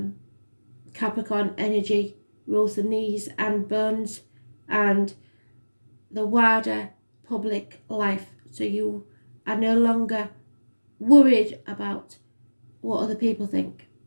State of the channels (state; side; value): inverted; both; correlation -1.00